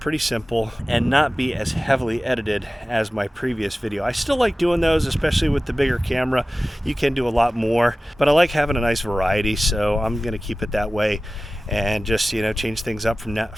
simple and not be as heavily edited as my previous video. I still like doing those, especially with the bigger camera. You can do a lot more, but I like having a nice variety, so I'm going to keep it that way and just, you know, change things up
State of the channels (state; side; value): normal; both; correlation 0.96